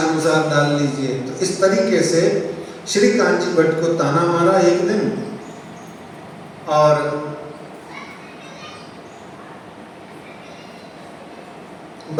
डाल लीजिए। तो इस तरीके से श्री कांची भट्ट को ताना मारा एक दिन, और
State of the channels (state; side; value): identical; both; correlation 1.00